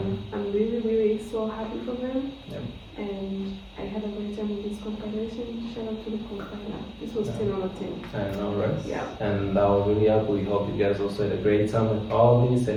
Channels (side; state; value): both; identical; correlation 1.00